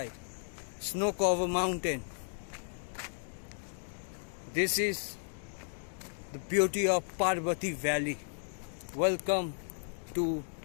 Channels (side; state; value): right; silent; digital silence